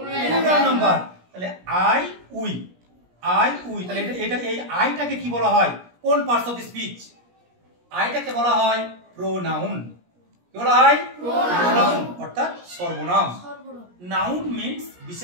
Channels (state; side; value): late; left; 17 ms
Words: নাম্বার। তাহলে আই উই, আই উই। তাহলে এটা এই আইটাকে কি বলা হয়? কোন পার্টস অফ স্পিচ? আইটাকে বলা হয় প্রোনাউন। কি বলা হয়? প্রোনাউন অর্থাৎ সর্বনাম। নাউন মিন্স